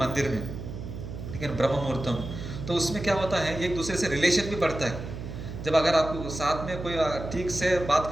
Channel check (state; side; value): noise; right; hum, 9 dB below the sound